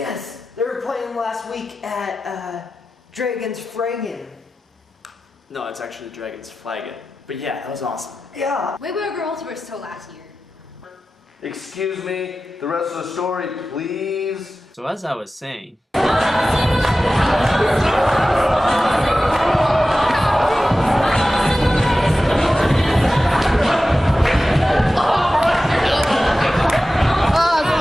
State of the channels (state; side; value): normal; both; correlation 0.94